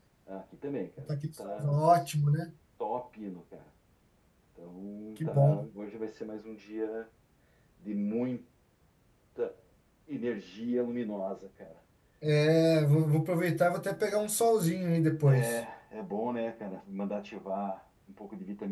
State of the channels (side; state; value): both; identical; correlation 1.00